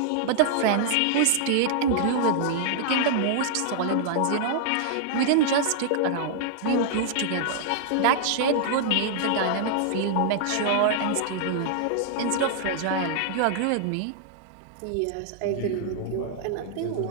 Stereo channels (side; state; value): both; different; correlation -0.01